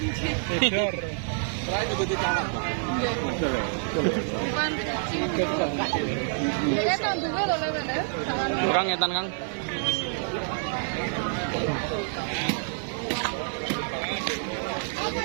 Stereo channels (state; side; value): silent; left; digital silence